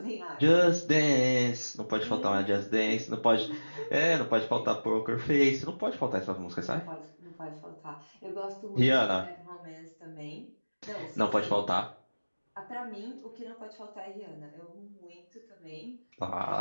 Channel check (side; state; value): both; inverted; correlation -1.00